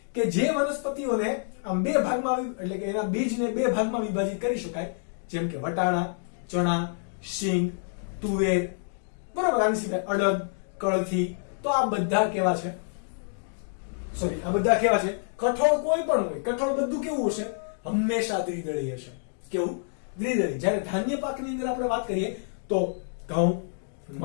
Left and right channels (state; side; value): silent; right; digital silence